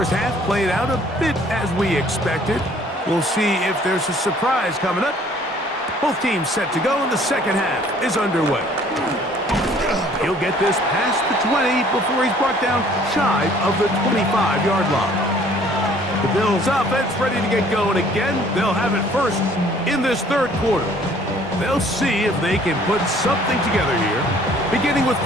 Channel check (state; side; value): normal; both; correlation 0.57